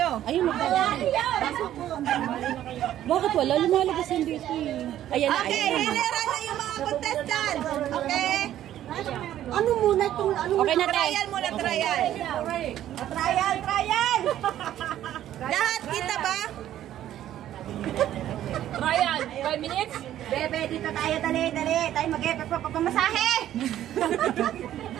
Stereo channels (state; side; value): quieter; left; 12.1 dB